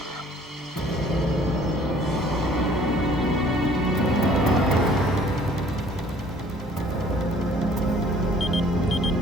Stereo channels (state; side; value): normal; both; correlation 0.55